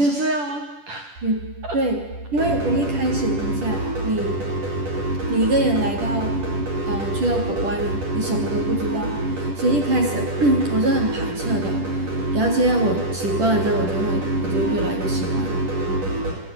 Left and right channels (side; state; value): left; late; 10 ms